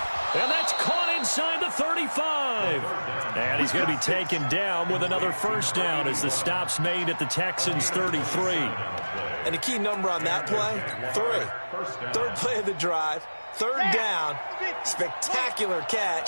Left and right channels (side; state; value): both; inverted; correlation -1.00